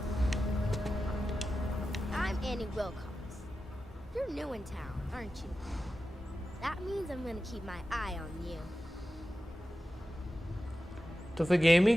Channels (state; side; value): normal; both; correlation 0.93